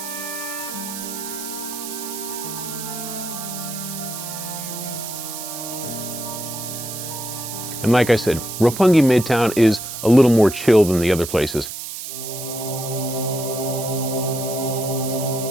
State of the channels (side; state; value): right; noise; hiss, 8 dB below the sound